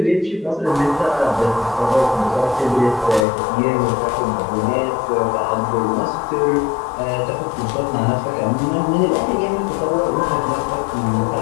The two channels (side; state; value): right; drops out; at 3.2 s